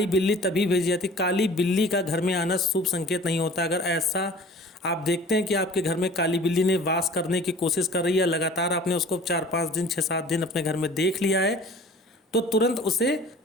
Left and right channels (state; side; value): normal; both; correlation 0.46